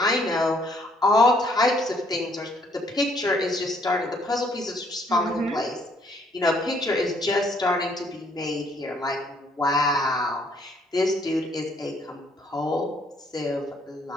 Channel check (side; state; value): both; normal; correlation 0.66